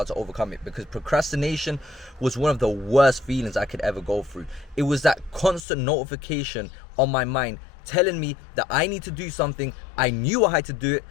to overcome it, because procrastination was one of the worst feelings I could ever go through. It was that constant notification on my mind telling me that I need to do something. I knew I had to do it,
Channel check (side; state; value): right; drops out; at 5.7 s